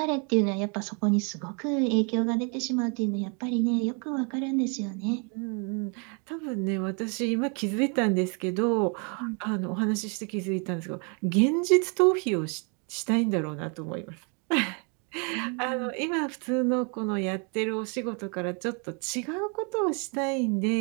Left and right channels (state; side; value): quieter; left; 36.1 dB